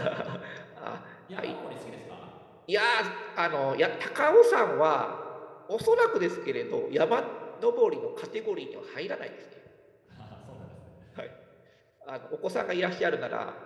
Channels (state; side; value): identical; both; correlation 1.00